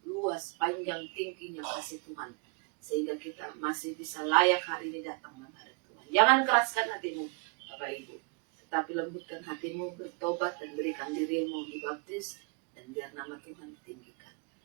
luas, panjang, tingginya kasih Tuhan, sehingga kita masih bisa layak hari ini datang menghadap Tuhan. Jangan keraskan hatimu, Bapak Ibu, tetapi lembutkan hatimu, bertobat dan berikan dirimu dibaptis, dan biar nama Tuhan ditinggikan.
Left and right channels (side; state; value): left; quieter; 35.4 dB